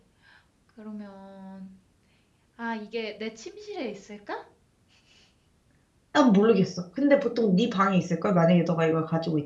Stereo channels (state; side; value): identical; both; correlation 1.00